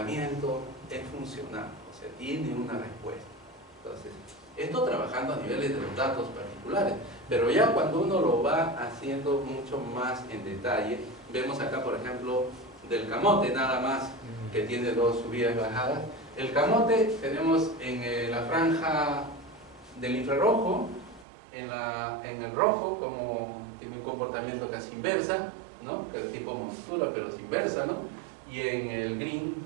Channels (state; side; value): drops out; left; at 21.2 s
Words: es funcional, o sea, tiene una respuesta. Entonces, esto trabajando a niveles de los datos particulares, pero ya cuando uno lo va haciendo mucho más en detalle, vemos acá, por ejemplo, del camote nada más, que tiene dos subidas y bajadas. El camote tenemos en la franja del infrarrojo, en el rojo, como tiene un comportamiento casi inversa, ¿no? Que es tipo montura, pero es inversa, ¿no? Y en el green,